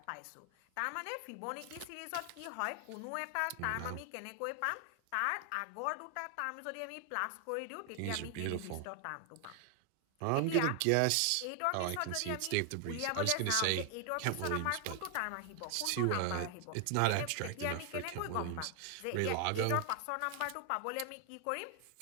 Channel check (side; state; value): both; different; correlation 0.00